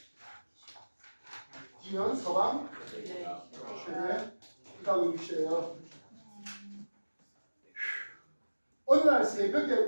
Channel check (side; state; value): both; inverted; correlation -1.00